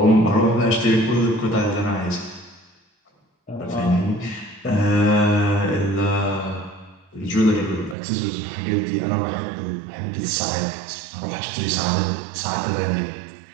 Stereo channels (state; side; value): drops out; left; at 8.0 s